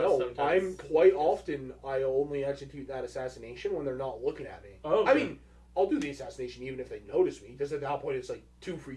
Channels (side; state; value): both; identical; correlation 1.00